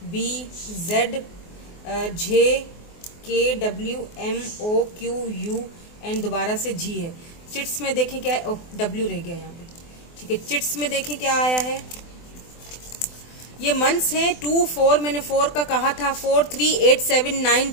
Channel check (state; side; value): late; right; 24 ms